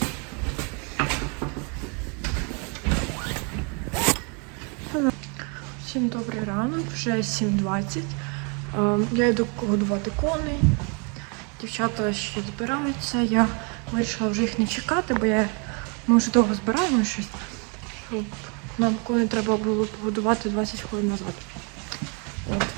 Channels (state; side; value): quieter; left; 35.0 dB